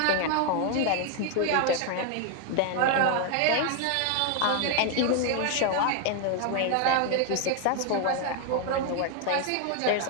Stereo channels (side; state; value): both; different; correlation 0.01